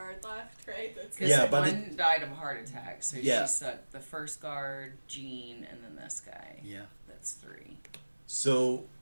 left, right? That's Because Yeah, but one died of a heart attack, so Yeah. she sucked the first guard, Jean, and then this guy. Yeah. That's 3. So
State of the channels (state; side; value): inverted; both; correlation -1.00